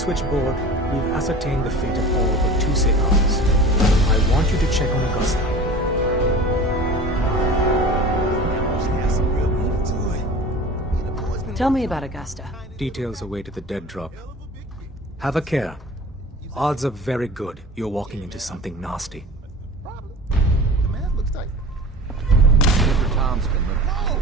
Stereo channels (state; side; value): normal; both; correlation 0.38